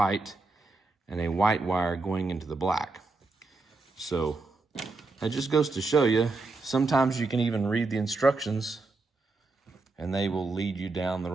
and a white wire going into the black. So that just goes to show you, sometimes you can even read the instructions and they will lead you down the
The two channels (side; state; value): left; quieter; 3.6 dB